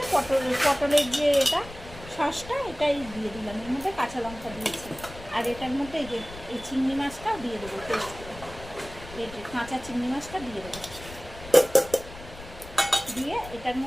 পটলের যে এটা সসটা, এটাই দিয়ে দিলাম। এর মধ্যে কাঁচা লঙ্কা দিয়েছি। আর এটার মধ্যে এই যে এই চিংড়ি মাছটা দিয়ে দেবো, পেস্ট করে এই যে কাঁচা চিংড়ি মাছটা দিয়ে দেবো। দিয়ে এটার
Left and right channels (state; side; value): noise; left; rumble, 15 dB below the sound